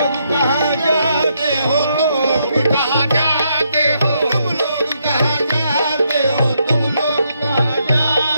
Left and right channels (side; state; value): both; inverted; correlation -0.77